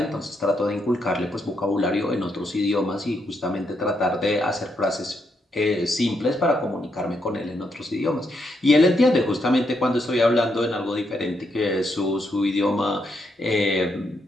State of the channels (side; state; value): both; normal; correlation 0.79